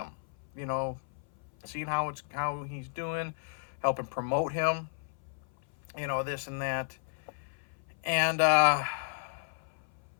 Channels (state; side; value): silent; right; 56 dB below the other